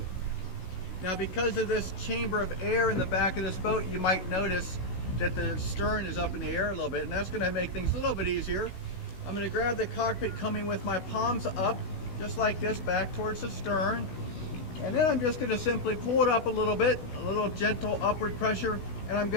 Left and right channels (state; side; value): late; right; 16 ms